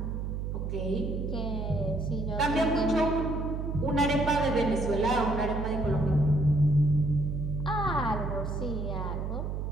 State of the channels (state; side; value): noise; right; hum, 3 dB below the sound